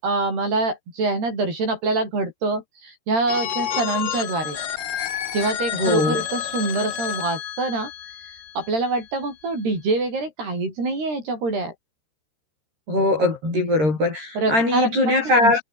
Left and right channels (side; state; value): left; late; 13 ms